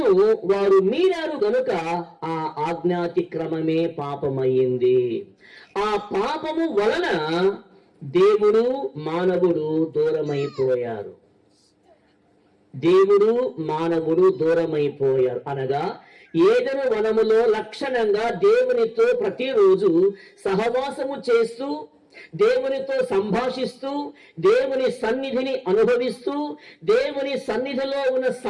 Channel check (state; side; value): identical; both; correlation 1.00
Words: వారు మీరారు గనుక ఆ ఆజ్ఞాతిక్రమమే పాపమయ్యింది. ఆ పాపము వలన దేవుడు మానవుడు దూరమైపోయారు. అనగా ఏదెను వనములో లక్షణంగా దేవునితో ప్రతిరోజు సహవాసము చేస్తూ, దేవునితో సంభాషిస్తూ, దేవుని సన్నిధిని అనుభవిస్తూ, దేవుని సన్నిధిలో ఉన్న